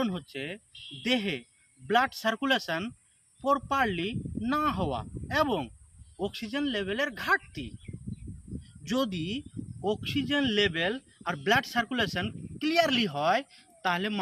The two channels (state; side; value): identical; both; correlation 1.00